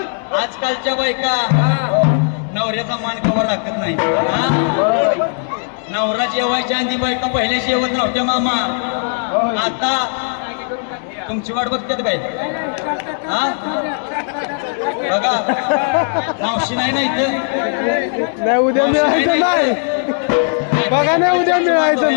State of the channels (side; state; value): right; silent; 59 dB below the other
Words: आजकालच्या बायका नवऱ्याचा मान कवर राखत नाही नवरा जेवायच्या आधी बायका पहिल्या जेवत नव्हत्या मामा आता तुमची वाट बघतात काय हा बघा मावशी नाही ना इथं नाही उद्या मिळायचं नाही बघा नाही उद्या मिळायचं